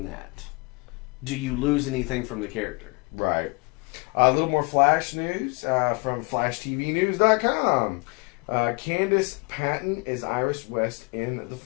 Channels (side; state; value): right; quieter; 29.8 dB